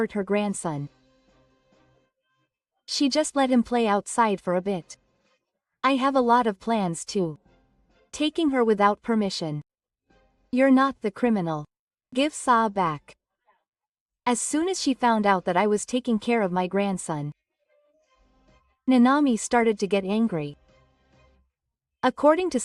her grandson. She just let him play outside for a bit. I have a lot of plans too. Taking her without permission. You're not the criminal. Give Sa back. as soon as she found out that I was taking care of my grandson. Nanami started to get angry. According to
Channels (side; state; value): both; identical; correlation 1.00